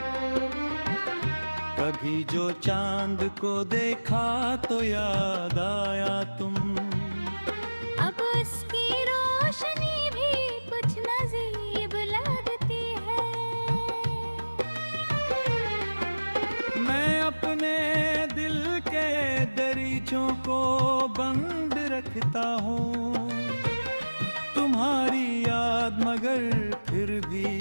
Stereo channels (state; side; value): inverted; both; correlation -1.00